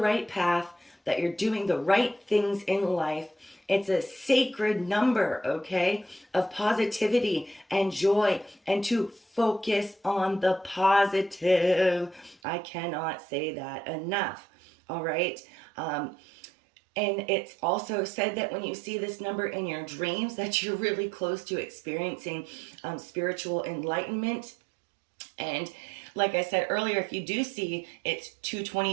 right path, that you're doing the right things in life. It's a sacred number, okay, of positivity and joy, and to focus on the positive. I cannot say that enough, all right? And it's also said that when you see this number in your dreams, that you're really close to experiencing spiritual enlightenment. And like I said earlier, if you do see it's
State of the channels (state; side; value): drops out; left; at 12.4 s